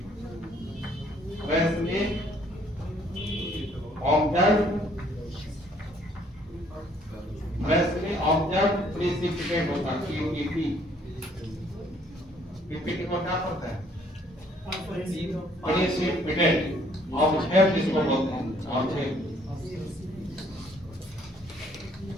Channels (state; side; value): normal; both; correlation 0.63